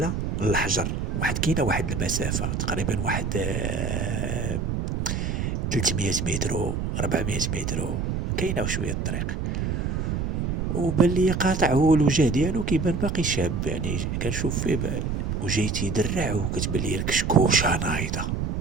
للحجر، كاينة واحد المسافة تقريبا واحد 300 متر 400 متر، كاينة وشوية الطريق. وبان ليا قاطع هو الوجه ديالو كيبان باقي شاب، يعني كنشوف فيه وجاي تيدرع وكتبان ليا الكشكوشة نايضة.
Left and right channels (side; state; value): right; noise; rumble, 1 dB below the sound